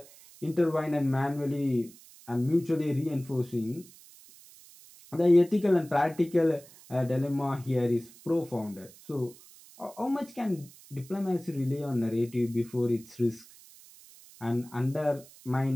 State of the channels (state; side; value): noise; right; hiss, 22 dB below the sound